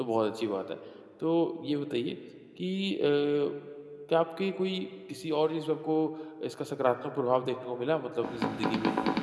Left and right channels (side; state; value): both; identical; correlation 1.00